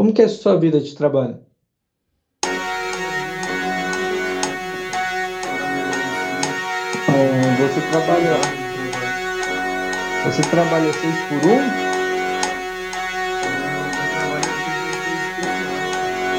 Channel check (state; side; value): identical; both; correlation 1.00